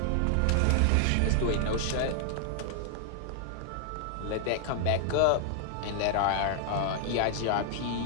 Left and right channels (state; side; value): different; both; correlation 0.00